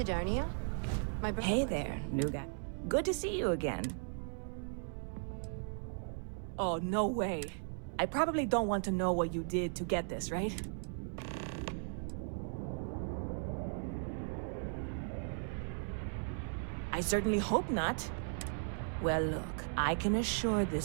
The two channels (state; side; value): silent; left; 53 dB below the other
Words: My brother. Hey there, new guy. Good to see you again. Oh, no way. I probably don't want to know what you did to get this, right? I certainly hope not. Well, look, I can assure